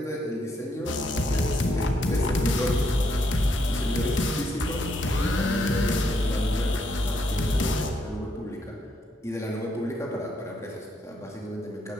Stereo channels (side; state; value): both; normal; correlation 0.76